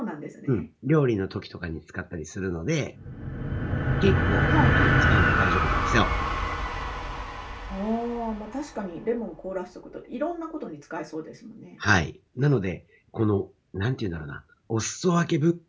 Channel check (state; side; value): identical; both; correlation 1.00